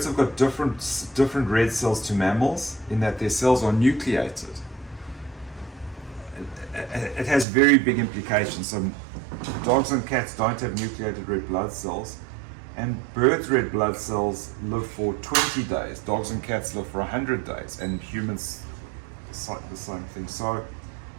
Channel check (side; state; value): left; drops out; at 7.5 s